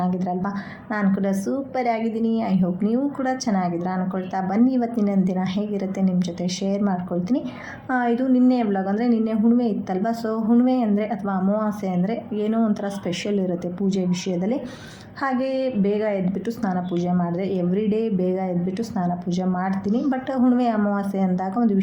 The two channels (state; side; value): identical; both; correlation 1.00